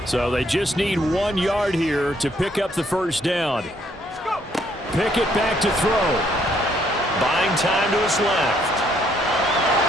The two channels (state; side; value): normal; both; correlation 0.68